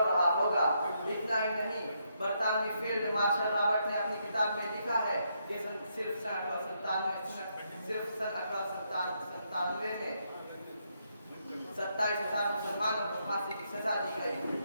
रहा होगा। इतना ही नहीं, बरतानवी फील्ड मार्शल रॉबर्ट ने अपनी किताब में लिखा है कि सिर्फ सन 1897 में 27,000 मुसलमानों को फांसी की सजा दी गई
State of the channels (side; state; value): both; inverted; correlation -0.78